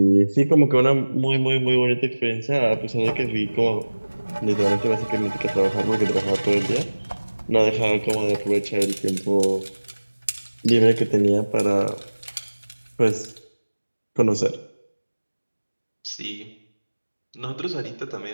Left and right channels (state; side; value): inverted; both; correlation -1.00